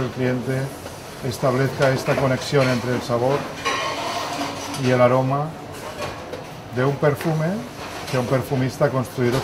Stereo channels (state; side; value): identical; both; correlation 1.00